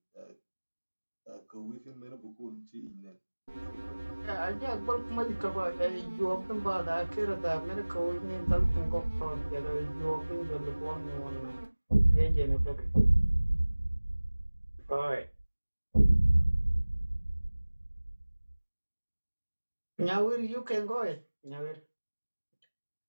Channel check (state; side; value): inverted; both; correlation -1.00